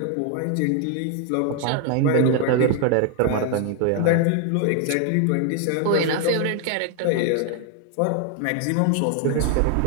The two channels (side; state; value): both; different; correlation 0.01